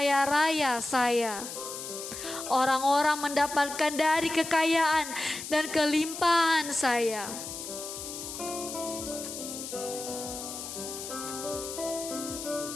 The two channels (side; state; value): left; noise; hiss, 8 dB below the sound